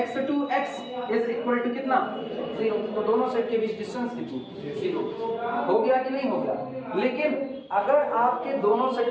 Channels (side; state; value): both; identical; correlation 1.00